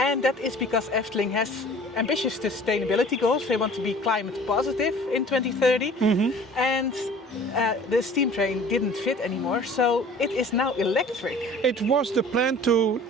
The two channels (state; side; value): normal; both; correlation 0.47